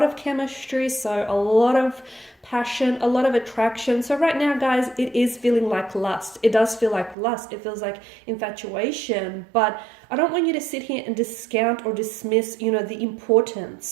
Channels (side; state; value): left; drops out; at 7.2 s